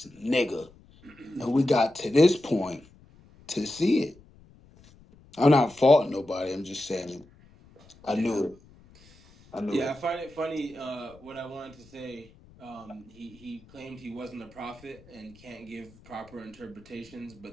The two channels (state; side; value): noise; left; rumble, 25 dB below the sound